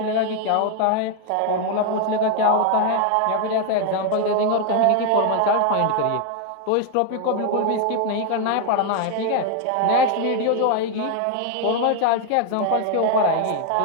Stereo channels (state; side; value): different; both; correlation 0.00